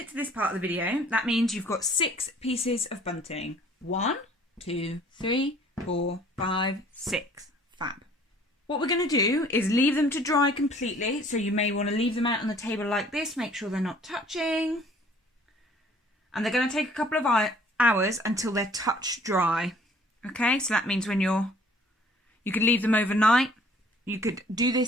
to this part of the video, that means you've got 6 pieces of bunting. 1, 2, 3, 4, 5, 6. Fab. What we're going to do is leave them to dry completely. So you may want to leave them out on the table like this. Make sure they're not touching. And they're going to take a couple of hours until they're touch dry. Okay, so that means when you could leave them overnight. You could do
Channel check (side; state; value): both; normal; correlation 0.55